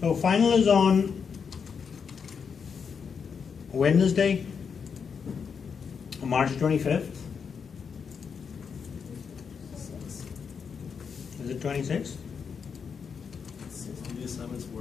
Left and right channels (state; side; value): quieter; right; 6.3 dB